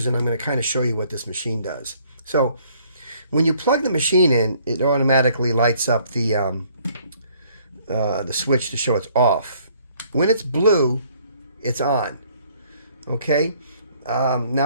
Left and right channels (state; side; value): inverted; both; correlation -0.62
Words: and I'm going to kind of show you what this machine does. So when you plug the machine in, it automatically lights up the switch to show it's off. When it's blue, it's on. Okay,